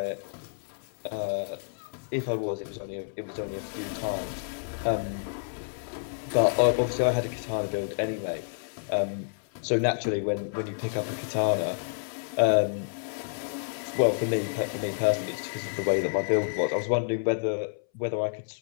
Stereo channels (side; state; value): right; silent; 58 dB below the other